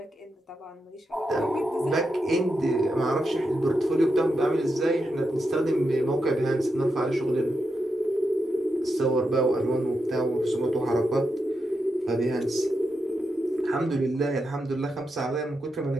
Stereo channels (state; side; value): normal; both; correlation 0.86